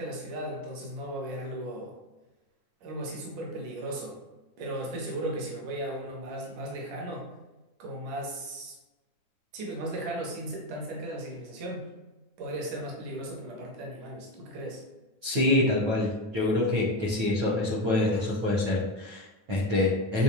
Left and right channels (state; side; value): late; left; 9.2 ms